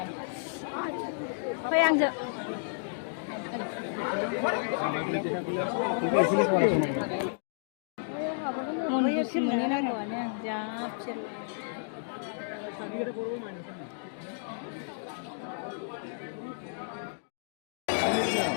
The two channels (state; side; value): silent; right; digital silence